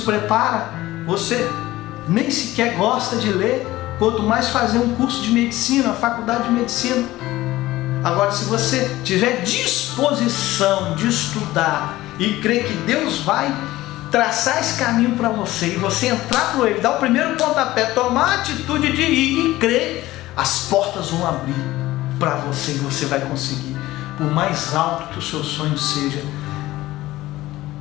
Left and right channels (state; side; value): quieter; right; 17.0 dB